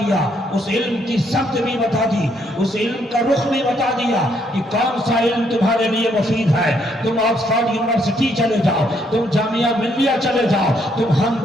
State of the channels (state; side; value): normal; both; correlation 0.71